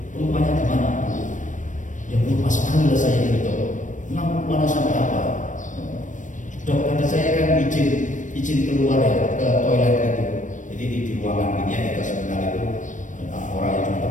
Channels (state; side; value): late; right; 0.37 ms